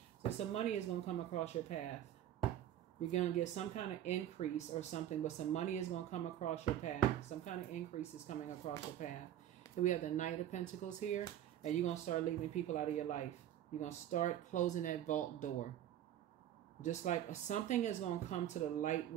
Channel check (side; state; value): left; quieter; 11.6 dB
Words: So some money is going to come across your path. You're going to get some kind of increase or something, but some money is going to come across your path. Some kind of increase is coming across your path. Here we have the Knight of Pentacles here. And you're going to start leaving people out of your life. You're going to start closing that vault door. Just like something is going to come to the light